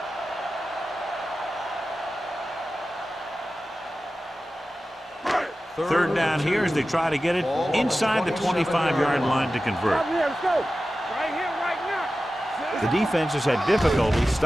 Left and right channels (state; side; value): normal; both; correlation 0.94